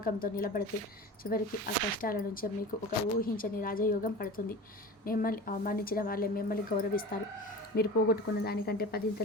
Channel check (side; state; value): both; normal; correlation 0.34